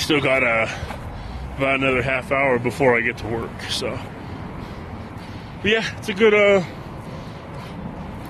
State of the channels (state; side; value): identical; both; correlation 1.00